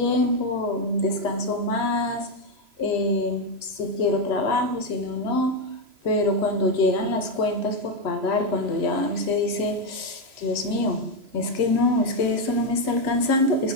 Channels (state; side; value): late; left; 3.0 ms